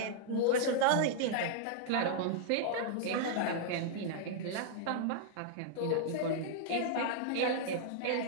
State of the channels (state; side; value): different; both; correlation -0.01